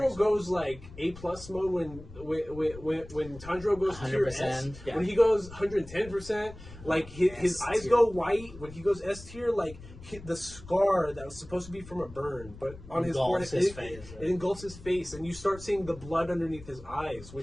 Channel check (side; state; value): left; noise; rumble, 16 dB below the sound